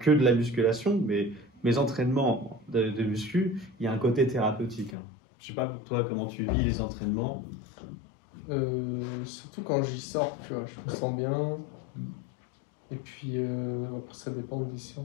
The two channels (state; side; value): drops out; right; at 5.0 s